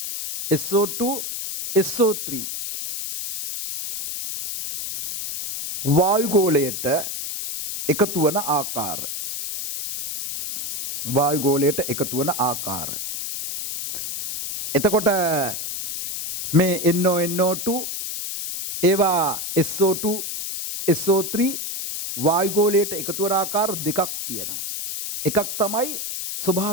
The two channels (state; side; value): noise; left; hiss, 5 dB below the sound